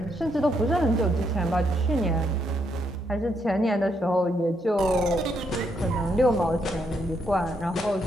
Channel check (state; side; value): normal; both; correlation 0.76